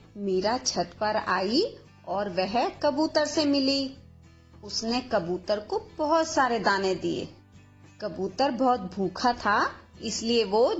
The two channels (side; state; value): both; identical; correlation 1.00